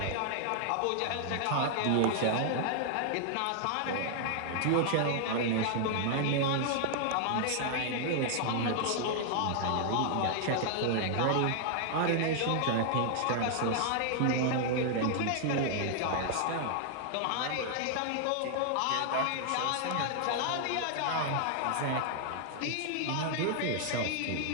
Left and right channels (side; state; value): both; different; correlation 0.00